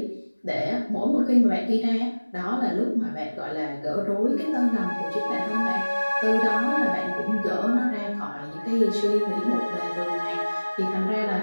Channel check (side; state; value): both; inverted; correlation -1.00